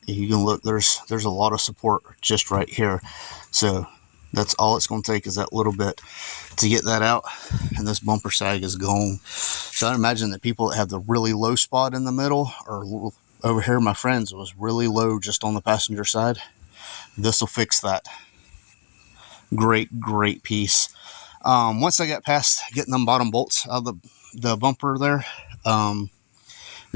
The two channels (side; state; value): right; silent; digital silence